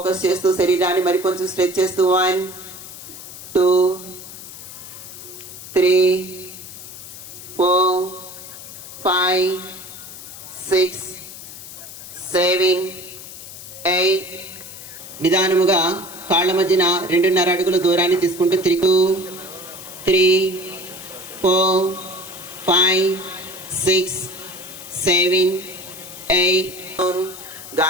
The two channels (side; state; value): left; noise; hiss, 13 dB below the sound